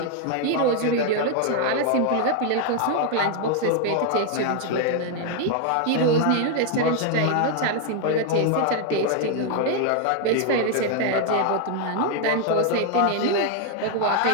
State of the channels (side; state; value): both; different; correlation 0.00